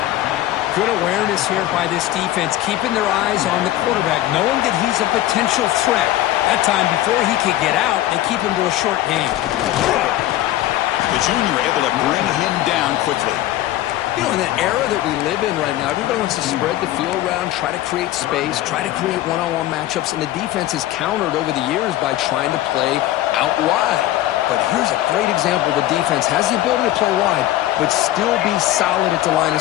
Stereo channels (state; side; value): quieter; right; 14.6 dB